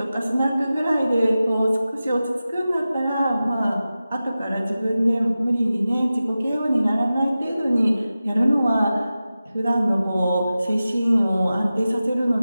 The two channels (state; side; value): inverted; both; correlation -0.94